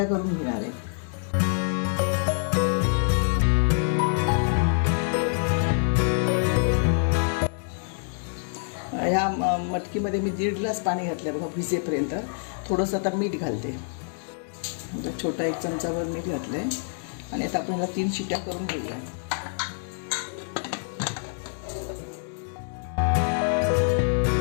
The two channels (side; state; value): right; silent; digital silence